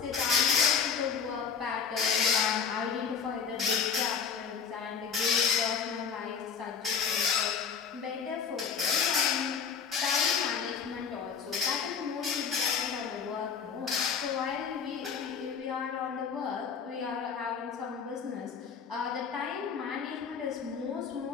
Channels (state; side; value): quieter; right; 6.5 dB